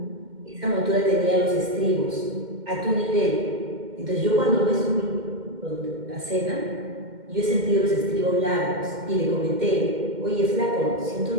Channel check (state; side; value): late; left; 2.1 ms